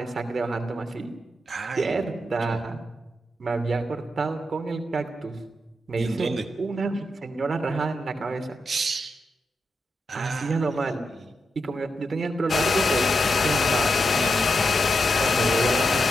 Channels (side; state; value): both; normal; correlation 0.86